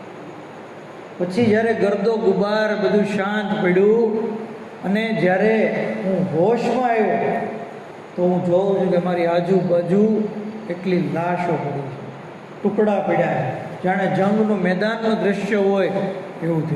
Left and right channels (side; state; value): both; identical; correlation 1.00